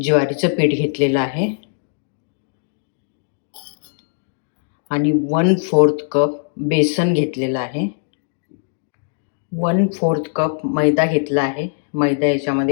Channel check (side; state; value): right; silent; digital silence